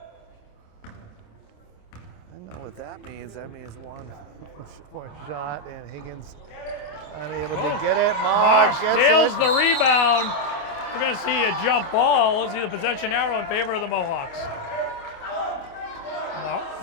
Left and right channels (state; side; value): late; right; 28 ms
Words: What that means one shot, and Higgins unable to get it. Marr gets steals it. the rebound. We're going to see a jump ball. Let's see the possession arrow in favor of the Mohawks.